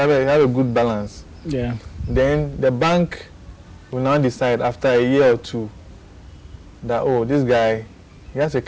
a good balance. Yeah. Then the bank will now decide after a year or two that, oh, this guy, he has a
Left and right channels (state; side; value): identical; both; correlation 1.00